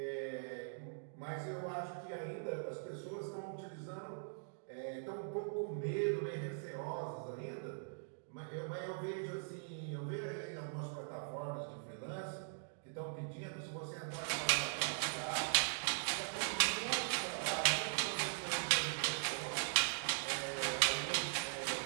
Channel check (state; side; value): silent; left; digital silence